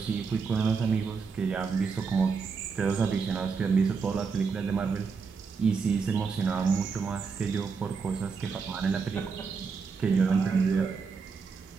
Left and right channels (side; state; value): left; quieter; 5.3 dB